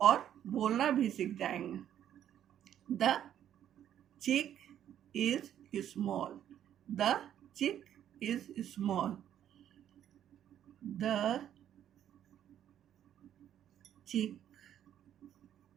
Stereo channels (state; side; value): quieter; left; 10.5 dB